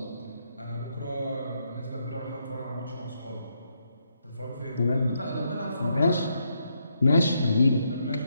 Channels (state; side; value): inverted; both; correlation -0.78